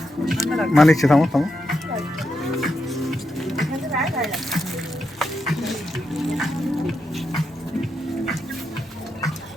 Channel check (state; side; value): normal; both; correlation 0.84